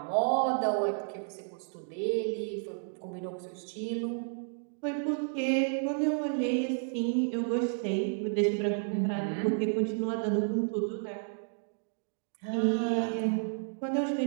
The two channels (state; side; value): silent; left; digital silence